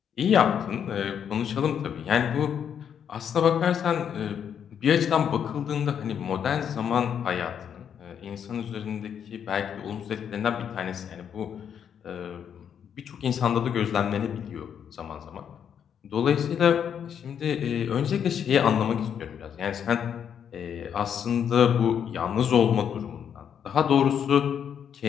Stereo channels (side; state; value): right; quieter; 8.3 dB